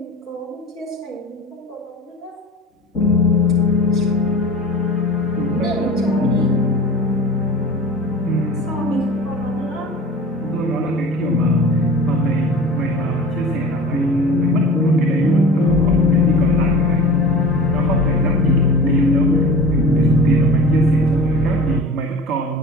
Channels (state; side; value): normal; both; correlation 0.38